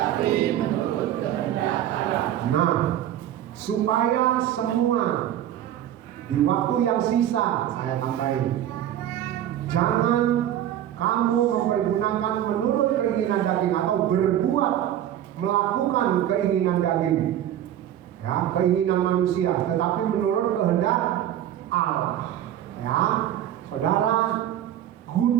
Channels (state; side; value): quieter; left; 11.5 dB